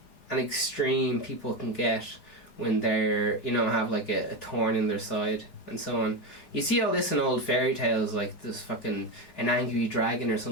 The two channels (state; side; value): late; right; 4.8 ms